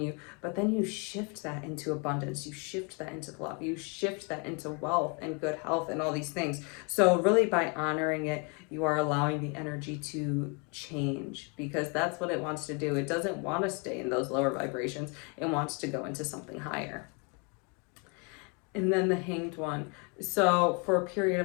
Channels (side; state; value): right; quieter; 33.9 dB